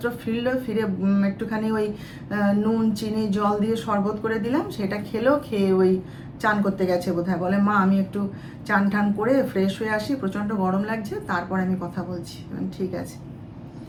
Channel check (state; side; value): identical; both; correlation 1.00